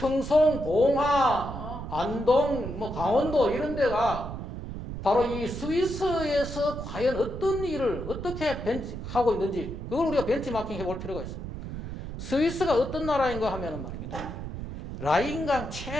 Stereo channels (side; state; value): right; noise; rumble, 8 dB below the sound